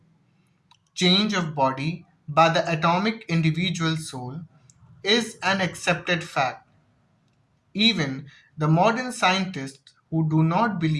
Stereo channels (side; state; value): both; identical; correlation 1.00